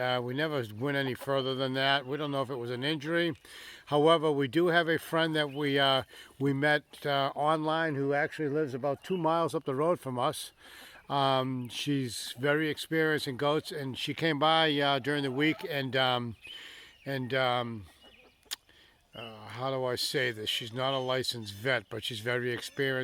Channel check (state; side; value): identical; both; correlation 1.00